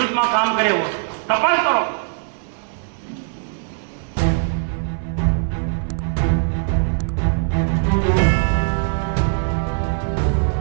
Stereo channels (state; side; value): silent; left; 64 dB below the other